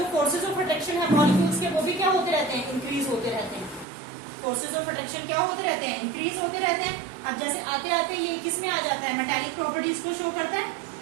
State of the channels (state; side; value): drops out; left; at 3.9 s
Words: फोर्सेज ऑफ अट्रैक्शन है मॉलिक्यूल्स के वो भी क्या होते रहते हैं? इंक्रीज होते रहते हैं। फोर्सेज ऑफ अट्रैक्शन क्या होते रहते हैं? इंक्रीज होते रहते हैं। अब जैसे आते आते ये किस में आ जाता है? मेटालिक प्रॉपर्टीज को शो करता है।